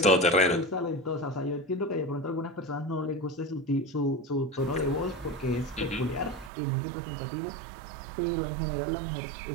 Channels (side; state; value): left; drops out; at 6.5 s